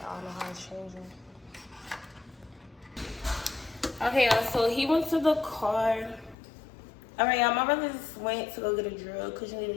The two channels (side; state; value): right; drops out; at 6.4 s